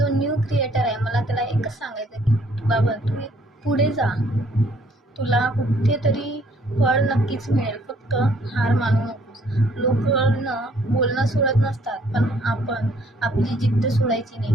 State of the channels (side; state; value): both; normal; correlation 0.63